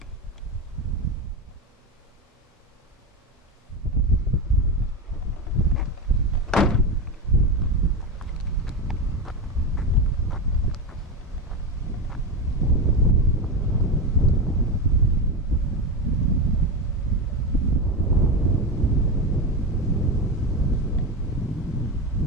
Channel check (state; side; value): normal; both; correlation 0.17